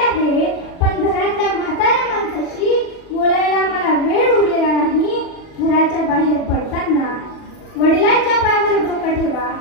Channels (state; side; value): late; right; 40 ms